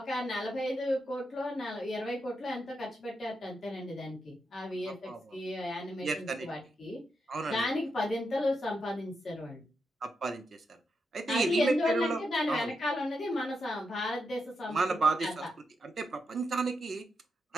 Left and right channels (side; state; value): both; normal; correlation 0.84